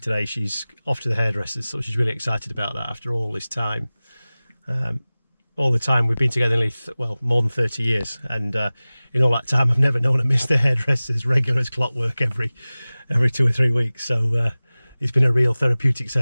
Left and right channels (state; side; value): inverted; both; correlation -0.98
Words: She's off to the hairdressers, so she's really excited about that after all this time. All the time we've been together nearly, more than 30 years, and in all that time I've never known her miss the hairdressers regular as clockwork every 2 or 3 weeks. So it's been a real therapeutic